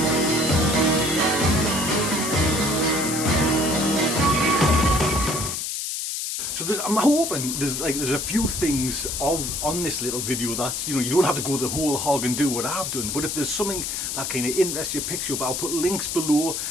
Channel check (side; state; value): left; noise; hiss, 3 dB below the sound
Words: So I'm hoping there's a few things on this little video that you don't have to go the whole hog and do what I've done, but if there's something that kind of interests you, picks you up, I'll put links below.